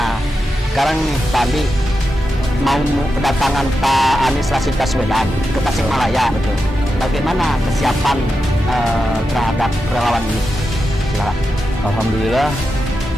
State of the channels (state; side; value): normal; both; correlation 0.89